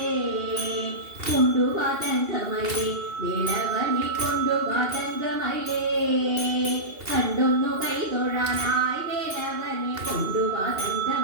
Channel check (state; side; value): late; left; 2.7 ms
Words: കൊണ്ടു വാ തങ്കമയിലേ വേലവനെ കൊണ്ടു വാ തങ്കമയിലേ കണ്ടൊന്നു കൈതൊഴാനായി വേലവനെ കൊണ്ടു വാ